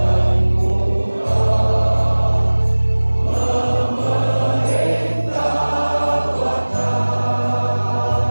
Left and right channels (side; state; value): both; inverted; correlation -1.00